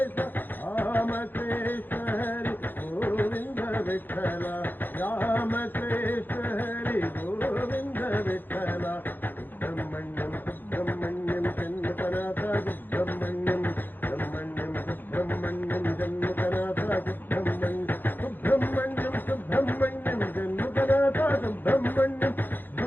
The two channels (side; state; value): right; late; 0.090 ms